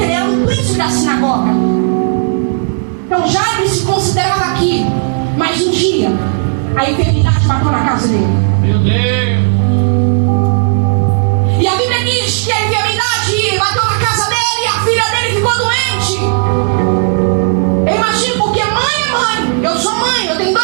era um príncipe da sinagoga. Então Jairo se considerava aqui, mas um dia a enfermidade bateu na casa dele. Meu Deus. E a Bíblia diz que a enfermidade bateu na casa dele e a filha dele ficou doente. Eu imagino, porque mãe é mãe. Eu sou mãe, eu tenho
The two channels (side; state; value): left; silent; digital silence